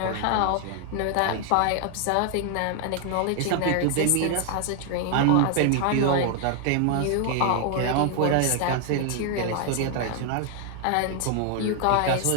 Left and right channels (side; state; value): both; different; correlation 0.00